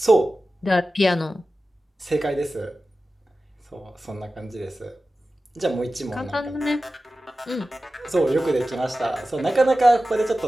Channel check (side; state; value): both; normal; correlation 0.94